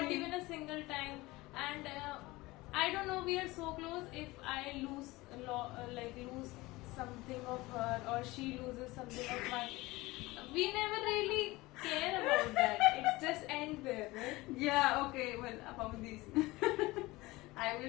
thing. even a single time, and I don't know. We are so close. If I lose lose something of her or she loses something of mine, we never really care about that. It's just end there, right? Yeah, okay, well, about this. I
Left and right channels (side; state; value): right; quieter; 20.6 dB